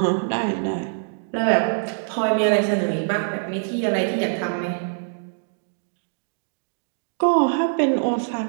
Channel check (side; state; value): left; silent; digital silence